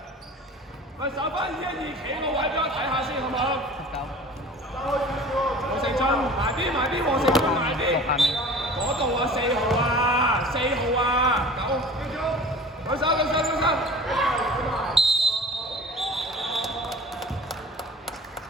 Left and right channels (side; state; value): both; normal; correlation 0.42